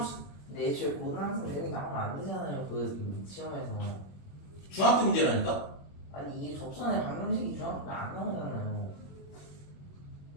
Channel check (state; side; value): late; right; 21 ms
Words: 근데 애초에 고등학생 여기 나오면 안 되잖아요. 그 시험에서. 중학교 문제라니까? 아니 이게 접선의 방정식이 중학교에 안 나오잖아요.